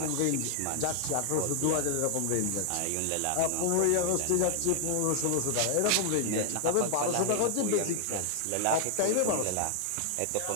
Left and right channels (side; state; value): both; different; correlation 0.00